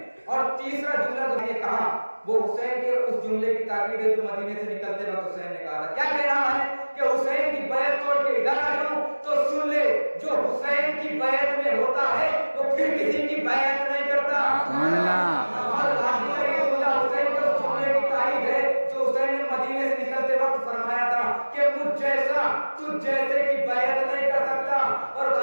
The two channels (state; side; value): inverted; both; correlation -1.00